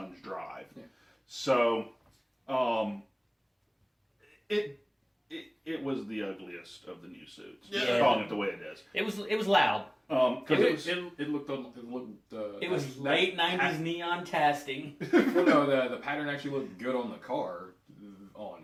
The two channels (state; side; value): identical; both; correlation 1.00